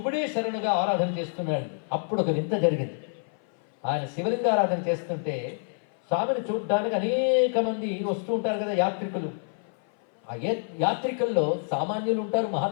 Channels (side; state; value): right; silent; 57 dB below the other